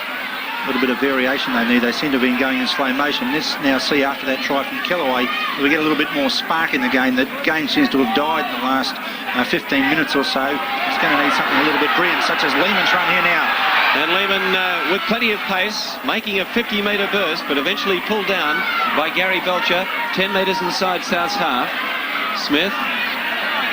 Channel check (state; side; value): identical; both; correlation 1.00